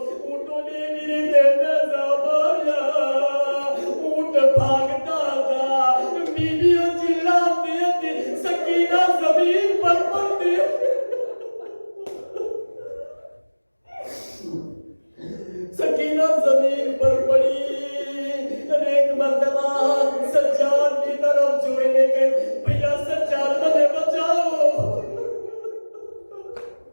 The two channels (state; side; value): inverted; both; correlation -1.00